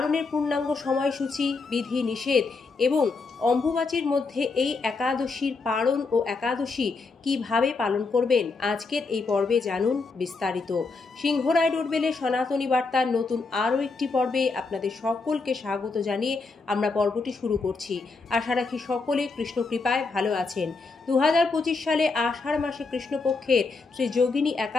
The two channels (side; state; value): right; quieter; 4.1 dB